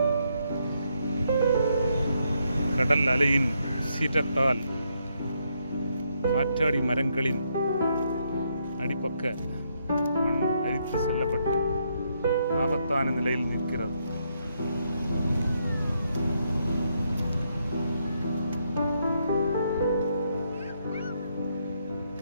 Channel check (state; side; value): inverted; both; correlation -0.76